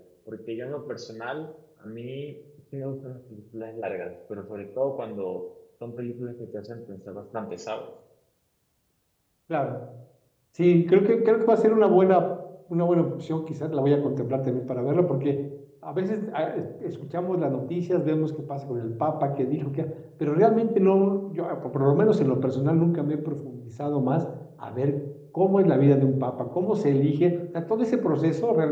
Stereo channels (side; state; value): both; identical; correlation 1.00